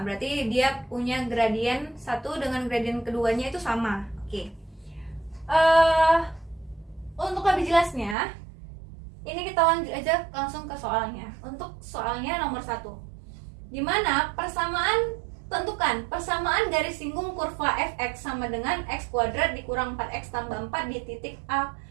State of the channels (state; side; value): drops out; left; at 8.2 s